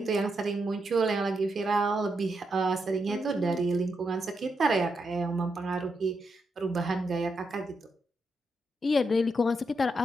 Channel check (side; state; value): both; normal; correlation 0.82